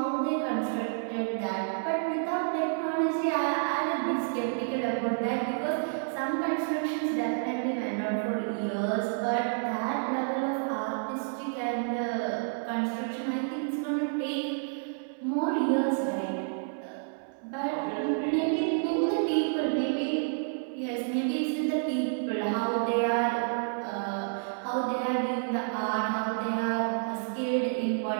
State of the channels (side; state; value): left; silent; 58 dB below the other